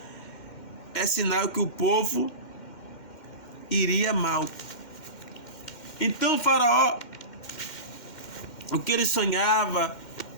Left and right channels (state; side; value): late; right; 2.1 ms